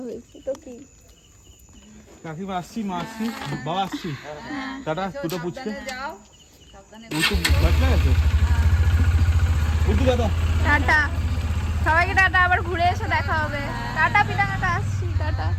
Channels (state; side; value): identical; both; correlation 1.00